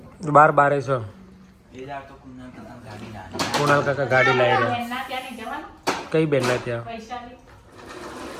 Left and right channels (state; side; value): identical; both; correlation 1.00